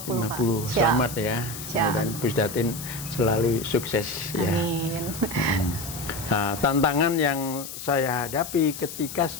Pak. Selamat ya. Dan Pusdatin selalu sukses. Amin. Ya. Nah, tantangan yang saya hadapi ketika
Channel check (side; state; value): left; noise; hiss, 10 dB below the sound